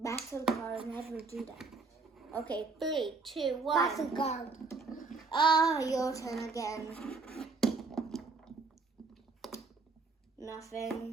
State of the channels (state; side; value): quieter; left; 4.1 dB